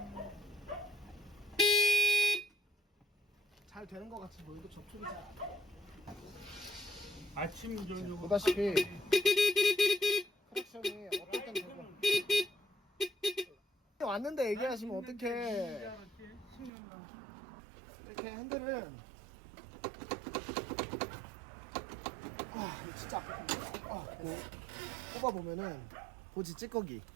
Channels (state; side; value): drops out; left; at 16.7 s